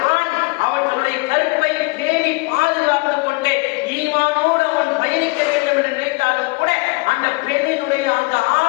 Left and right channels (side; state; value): right; quieter; 26.7 dB